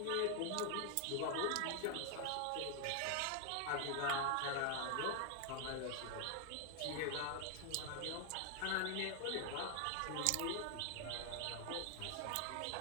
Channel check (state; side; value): different; both; correlation 0.00